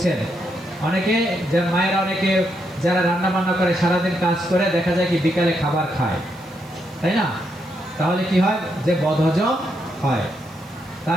অনেকে, যে মায়েরা, অনেকে যারা রান্না বান্না করে সারাদিন কাজ করে, দেখা যায় কি বিকালে খাবার খায়, তাই না? তাহলে কি হয়? যে বদহজম হয়।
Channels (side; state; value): right; noise; hiss, 27 dB below the sound